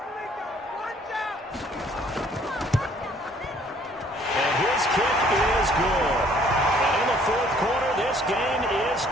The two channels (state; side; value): normal; both; correlation 0.60